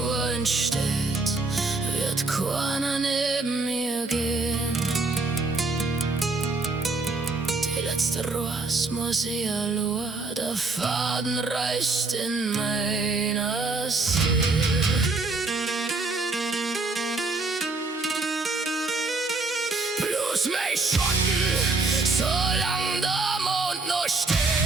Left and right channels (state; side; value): quieter; left; 3.5 dB